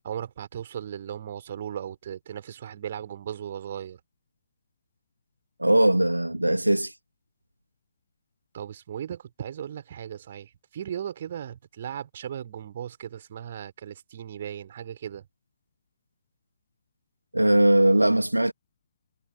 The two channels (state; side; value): inverted; both; correlation -0.98